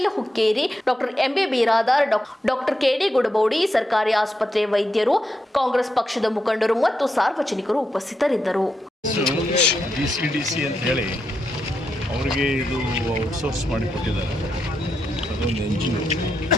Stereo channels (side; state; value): both; normal; correlation 0.84